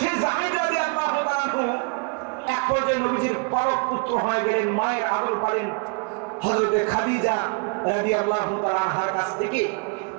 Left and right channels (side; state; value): left; quieter; 35.6 dB